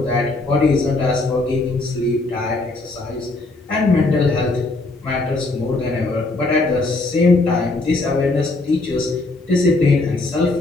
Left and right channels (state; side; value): quieter; right; 3.2 dB